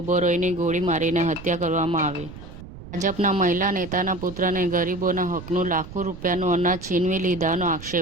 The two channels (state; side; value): noise; right; rumble, 14 dB below the sound